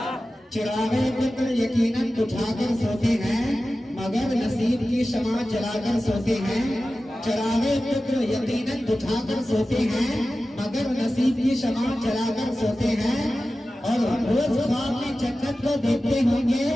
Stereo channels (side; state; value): both; normal; correlation 0.95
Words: چراغے فکر یقیناً بجھا کر سوتے ہیں، مگر نصیب کی شمع جلا کر سوتے ہیں، چراغے فکر یقیناً بجھا کر سوتے ہیں، مگر نصیب کی شمع جلا کر سوتے ہیں، اور روز خواب میں جنت کو دیکھتے ہوں گے،